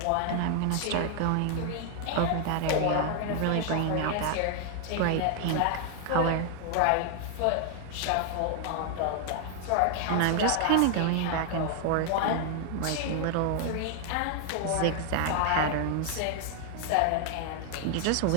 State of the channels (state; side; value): different; both; correlation 0.00